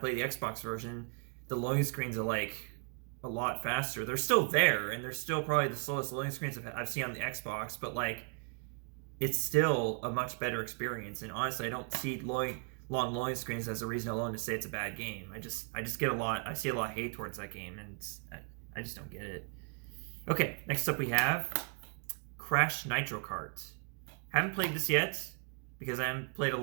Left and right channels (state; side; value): quieter; left; 38.8 dB